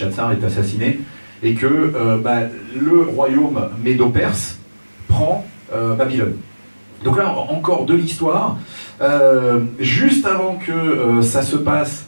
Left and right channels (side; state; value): both; inverted; correlation -1.00